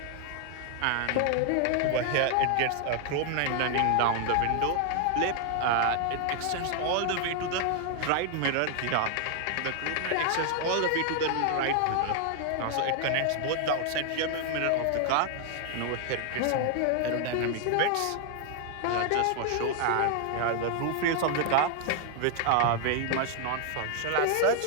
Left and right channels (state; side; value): different; both; correlation 0.00